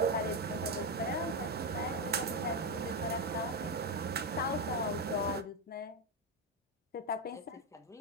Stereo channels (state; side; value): normal; both; correlation 0.07